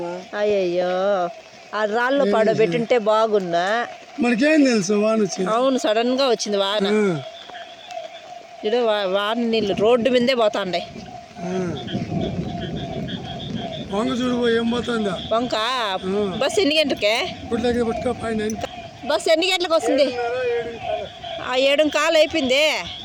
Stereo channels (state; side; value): identical; both; correlation 1.00